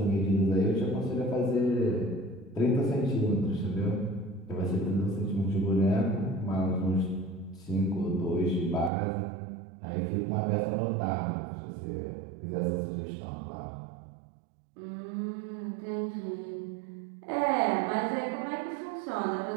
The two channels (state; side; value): drops out; left; at 8.9 s